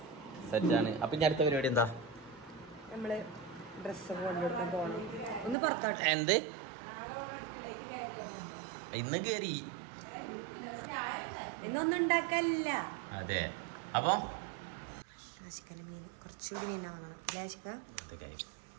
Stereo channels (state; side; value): drops out; left; at 5.6 s